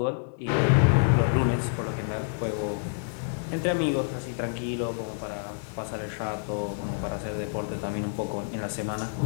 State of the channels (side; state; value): right; silent; digital silence